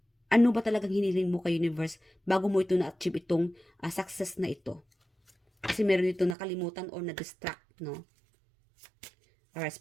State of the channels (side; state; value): left; drops out; at 6.4 s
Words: ano ba talagang hiniling mo kay universe bago mo ito na-achieve itong success na ito. Kasi meron dito nakalimutan or na-distract, no? Alright,